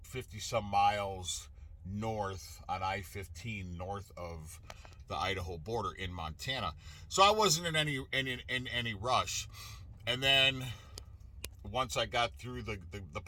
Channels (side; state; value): both; identical; correlation 1.00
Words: 50 some miles north on I-15, north of the Idaho border in Montana. So I wasn't in any rush. And then once I got through the